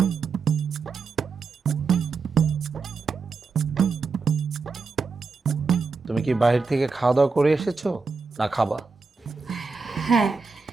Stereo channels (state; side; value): quieter; left; 4.6 dB